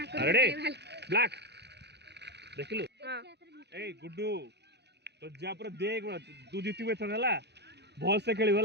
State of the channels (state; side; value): late; left; 0.49 ms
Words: कर अरे ब्लैक देखलु हां ए गुड्डू तो जा पर देख तू जीतबे त हला भल से खेली